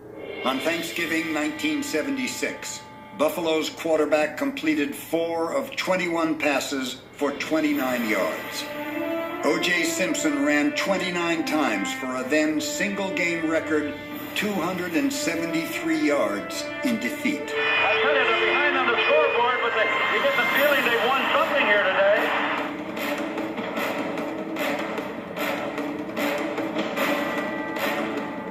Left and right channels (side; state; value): both; identical; correlation 1.00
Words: On Thanksgiving 1976, Buffalo's quarterback completed 4 of 21 passes for 29 yards. O.J. Simpson ran 29 times for a then single-game record 273 yards in defeat. I tell you, they're behind on the scoreboard, but you get the feeling they won something here today.